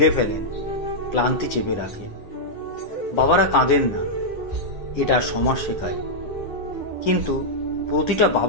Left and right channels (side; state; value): right; late; 9.7 ms